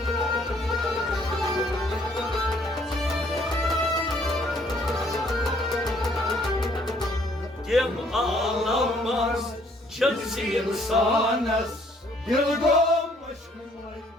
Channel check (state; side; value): normal; both; correlation 0.63